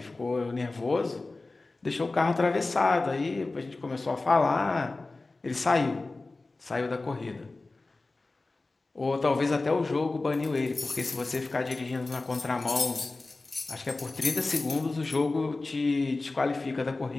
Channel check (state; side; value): quieter; right; 3.3 dB